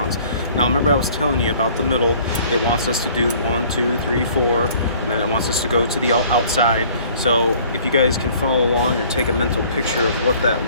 Now remember I was telling you about the middle. It wants us to do 1, 2, 3, 4, and then it wants us to go to the outside. So if you guys can follow along or take a mental picture of what that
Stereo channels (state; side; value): inverted; both; correlation -0.54